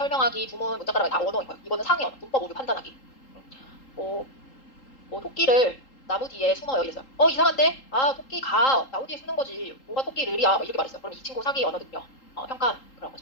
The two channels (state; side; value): late; right; 3.8 ms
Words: 부문, 문자가락이 다 언어인 거예요. 이거는 상위 언어, 문법 오류 판단하기. 뭐, 뭐 토끼를 나무 뒤에 숨어요 이랬어요. 이상한데? 아 토끼가 나무 뒤에 숨는 거지. 뭐가 토끼를이야? 막 이렇게 말했어요. 그럼 이 친구 사기 언어 능력 평가 그런